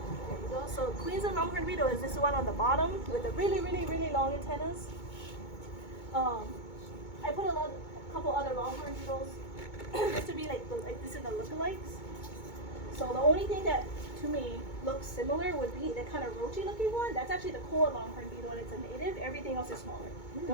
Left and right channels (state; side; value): late; right; 2.2 ms